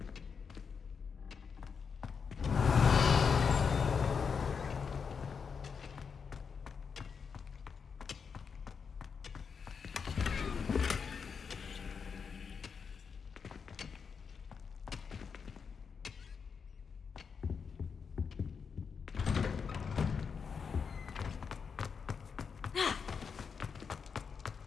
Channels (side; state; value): right; quieter; 6.0 dB